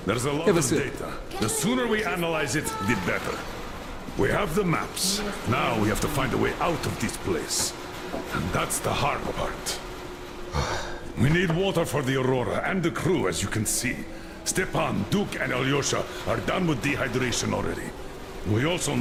There's a lot Have a of sip. data. The sooner we analyze it, the better. We have the maps. Now we have to find a way out of this place. And that's the hard part. We need water for the Aurora and the crew, as you can see. Stepan, Duke, and Alyosha are done with dehydration already. We also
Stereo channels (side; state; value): both; identical; correlation 1.00